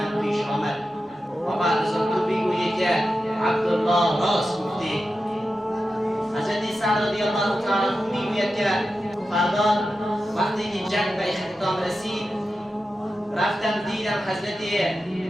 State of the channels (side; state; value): both; normal; correlation 0.91